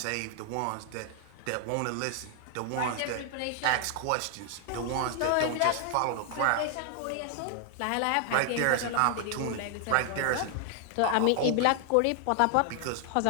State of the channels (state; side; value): different; both; correlation 0.00